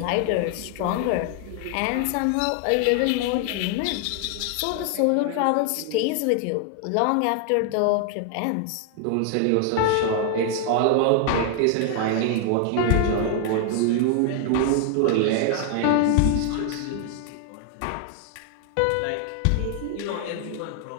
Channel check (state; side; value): different; both; correlation 0.00